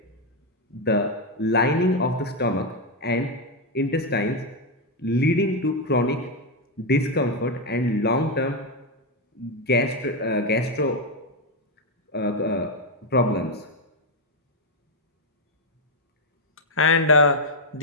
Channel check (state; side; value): normal; both; correlation 0.04